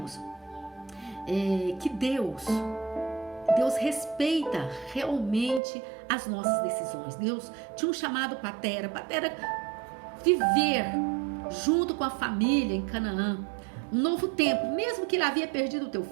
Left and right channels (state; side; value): drops out; left; at 5.6 s